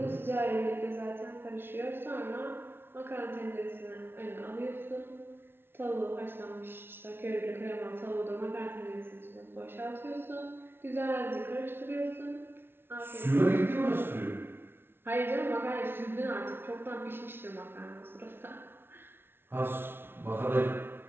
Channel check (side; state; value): left; late; 0.11 ms